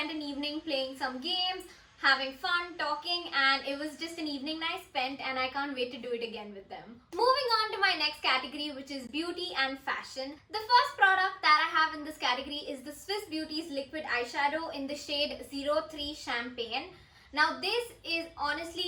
an evening playing some games, having fun, talking, and it was just an evening I spent and I can't wait to do it again with them. Moving on to my next category, which is beauty and fashion. The first product that I have in this category is the Swiss Beauty's liquid eyeshadow in the shade 03 Champagne. Now this is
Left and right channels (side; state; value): both; identical; correlation 1.00